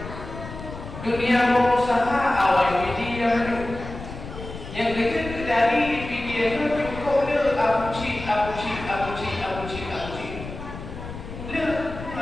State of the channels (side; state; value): left; noise; rumble, 11 dB below the sound